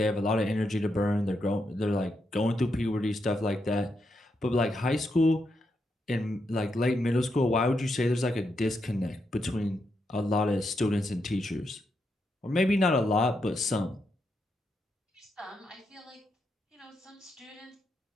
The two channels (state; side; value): normal; both; correlation 0.82